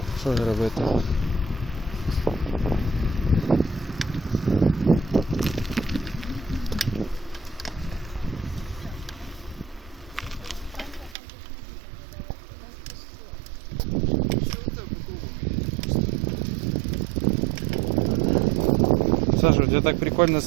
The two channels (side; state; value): left; drops out; at 11.2 s